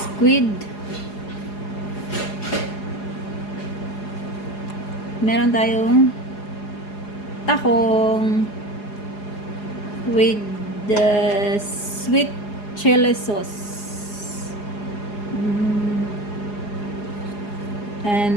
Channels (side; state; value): right; late; 4.8 ms